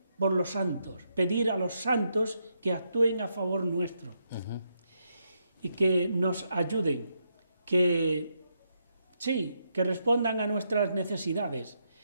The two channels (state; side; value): inverted; both; correlation -0.80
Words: por los santos, pedir a los santos que actúen a favor nuestro y que nos ayuden, que respondan a nuestras necesidades.